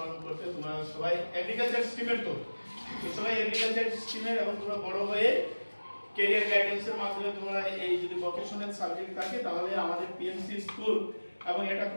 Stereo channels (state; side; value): inverted; both; correlation -1.00